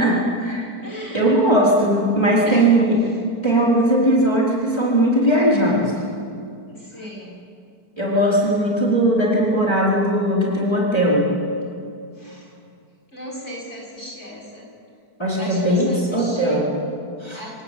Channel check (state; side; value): late; right; 4.5 ms